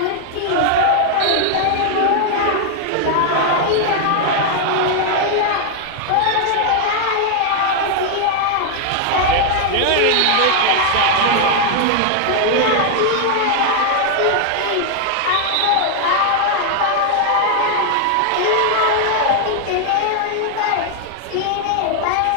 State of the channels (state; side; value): different; both; correlation 0.00